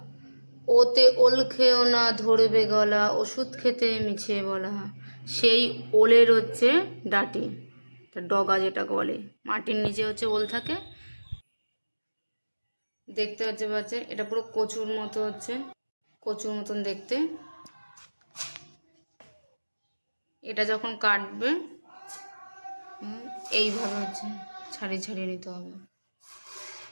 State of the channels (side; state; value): both; inverted; correlation -1.00